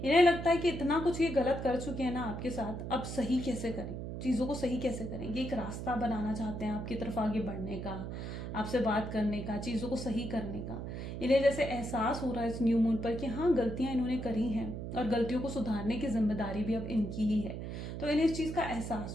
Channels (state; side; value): noise; right; hum, 6 dB below the sound